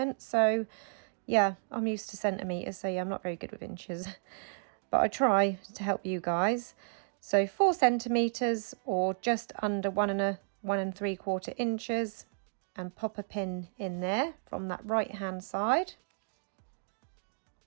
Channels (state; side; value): silent; left; digital silence